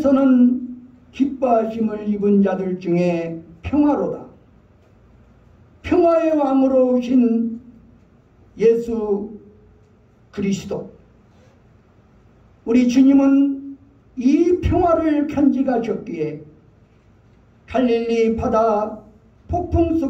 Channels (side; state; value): both; identical; correlation 1.00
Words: 기뻐하심을 입은 자들 중에 평화로다. 평화의 왕으로 오신 예수 그리스도, 우리 주님은 이 평화를 간직하셨기에 갈릴리 바다 폭풍